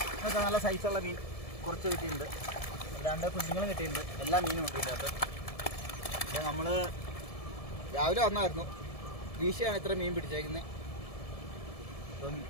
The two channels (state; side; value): late; right; 1.7 ms